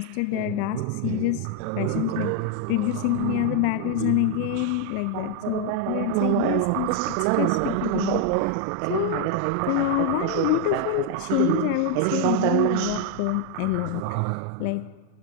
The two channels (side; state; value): both; different; correlation 0.01